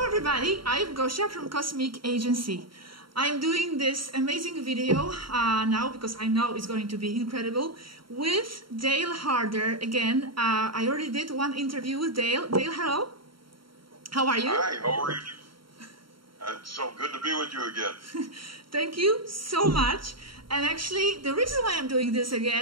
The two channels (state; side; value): late; left; 0.73 ms